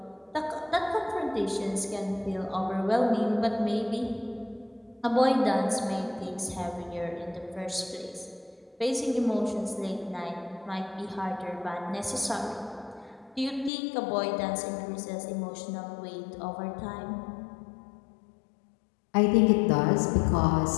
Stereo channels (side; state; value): right; drops out; at 13.7 s